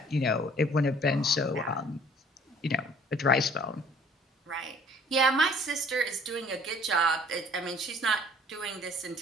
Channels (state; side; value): normal; both; correlation 0.55